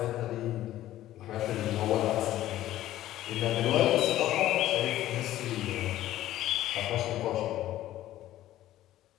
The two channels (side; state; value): right; quieter; 14.0 dB